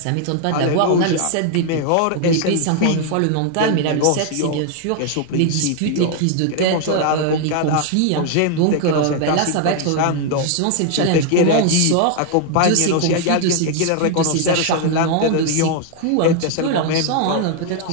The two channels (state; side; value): different; both; correlation 0.00